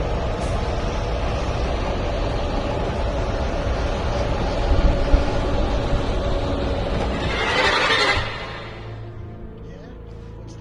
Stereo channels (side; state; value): both; identical; correlation 1.00